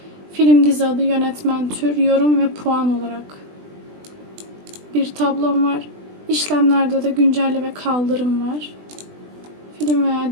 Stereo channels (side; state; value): left; late; 20 ms